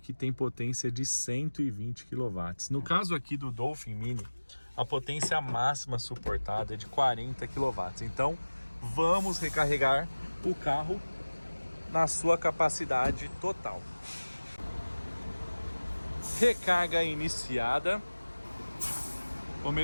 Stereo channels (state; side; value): inverted; both; correlation -1.00